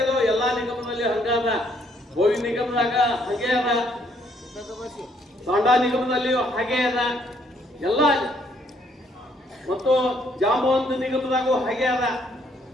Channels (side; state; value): both; normal; correlation 0.68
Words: ಅದು ಎಲ್ಲಾ ನಿಗಮದಲ್ಲಿ ಹಂಗಾದ. ಗೋವಿ ನಿಗಮದಾಗ ಹಾಗೆ ಅದ, ತಾಂಡಾ ನಿಗಮದಲ್ಲಿಯೂ ಹಾಗೆ ಅದ, ಎಲ್ಲ ಮತ್ತು ಜಾಂಬವಂತ ನಿಗಮದಾಗೂ ಹಾಗೆ ಅದ.